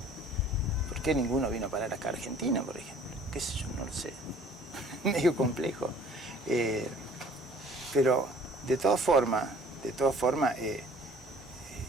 ¿Por qué ninguno vino a parar acá a Argentina, por ejemplo? ¿Qué sé yo? No lo sé. Medio complejo. Pero de todas formas,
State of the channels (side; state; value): both; normal; correlation 0.53